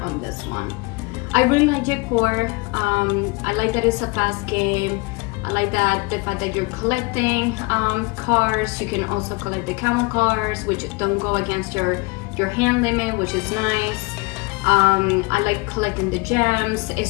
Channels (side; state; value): right; quieter; 26.7 dB